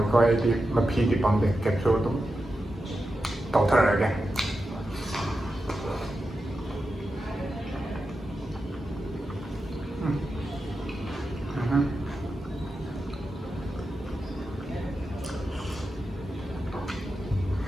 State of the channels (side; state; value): both; normal; correlation 0.90